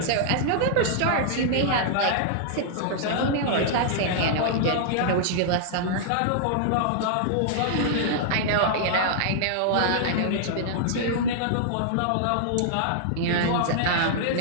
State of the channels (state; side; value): different; both; correlation -0.01